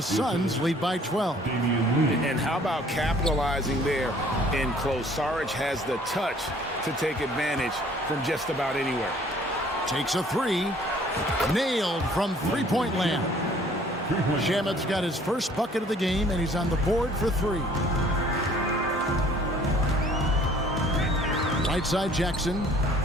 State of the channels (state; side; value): normal; both; correlation 0.56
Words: Suns lead by 12. And how about capitalizing there in close? Šarić has the touch to take advantage from just about anywhere. Takes a 3. Nailed from three-point land. Shamet's got his first bucket of the game, and he's on the board for 3. Right side Jackson.